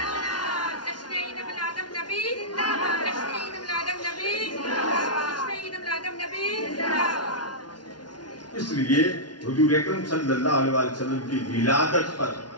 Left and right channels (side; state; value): right; late; 0.70 ms